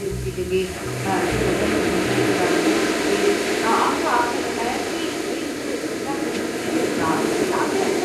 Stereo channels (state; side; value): identical; both; correlation 1.00